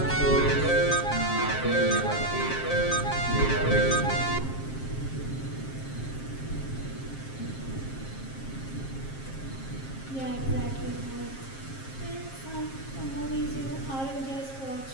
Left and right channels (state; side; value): late; right; 7.5 ms